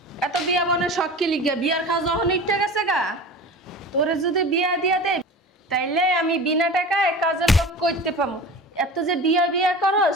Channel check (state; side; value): normal; both; correlation 0.35